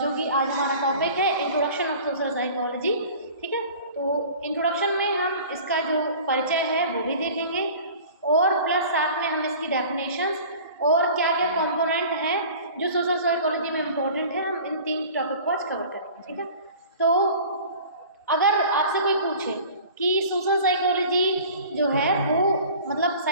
कि आज हमारा टॉपिक है इंट्रोडक्शन ऑफ सोशल साइकोलॉजी। ठीक है, तो इंट्रोडक्शन में हम इसका जो परिचय है वो भी देखेंगे और प्लस साथ में हम इसकी डेफिनेशंस और क्या क्या कंपोनेंट हैं जो सोशल साइकोलॉजी में इम्पोर्टेंट है, हम इन 3 टॉपिक को आज कवर करेंगे। ठीक है, तो अगर आपसे कोई पूछे कि सोशल साइकोलॉजी जो है वो मतलब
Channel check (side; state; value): both; inverted; correlation -0.43